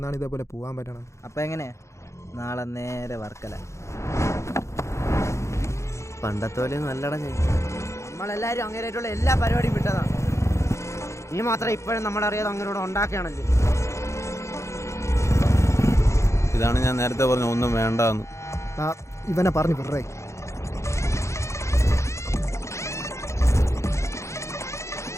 ഇതേപോലെ പോകാൻ പറ്റണം? അപ്പം എങ്ങനെ? നാളെ നേരെ വർക്കല. പണ്ടത്തെ പോലെ നല്ലട. നമ്മളെല്ലാവരും അങ്ങനെയായിട്ടുള്ള എല്ലാ പരിപാടിയും വിട്ടതാണ്. നീ മാത്രം ഇപ്പോഴും നമ്മളറിയാതെ അങ്ങനോട് ഉണ്ടാക്കുകയാണല്ലേ. ഇതാണ് ഞാൻ നേരത്തെ പറഞ്ഞ ഒന്നും വേണ്ടെന്ന്. ഇവനെ പറഞ്ഞു വിടറേ.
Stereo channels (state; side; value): late; right; 0.14 ms